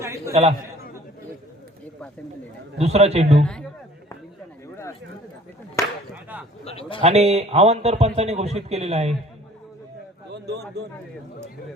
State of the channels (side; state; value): both; normal; correlation 0.51